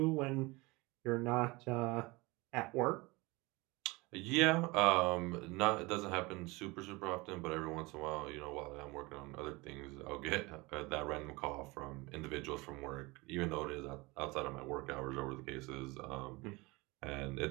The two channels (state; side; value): quieter; left; 24.0 dB